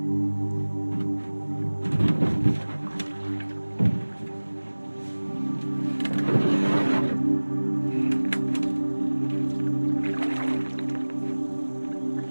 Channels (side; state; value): both; inverted; correlation -1.00